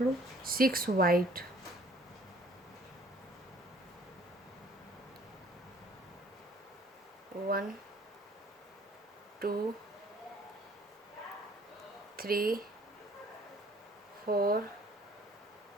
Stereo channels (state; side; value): normal; both; correlation 0.57